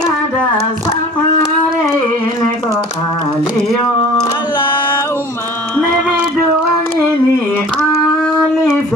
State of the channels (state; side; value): normal; both; correlation 0.46